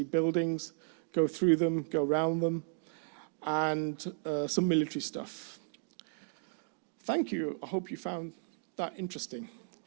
buildings, go through them, go around them, and some military stuff. Thank you. I hope you found that interesting.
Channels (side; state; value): left; silent; digital silence